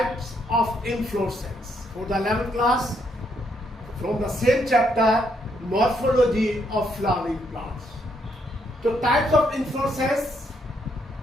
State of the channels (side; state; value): both; normal; correlation 0.74